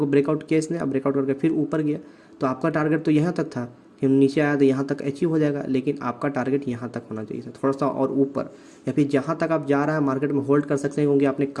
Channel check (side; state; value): both; identical; correlation 1.00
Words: ब्रेकआउट किया इसने, अब ब्रेकआउट करके फिर ऊपर गया। तो आपका टारगेट तो यहाँ तक था कि नीचे आया तो यहाँ तक अचीव हो जाएगा, लेकिन आपका टारगेट यहाँ तक होना चाहिए था, थोड़ा सा और ऊपर, या फिर जहाँ तक आप जा रहा है मार्केट में होल्ड कर सकते हैं, क्योंकि आपने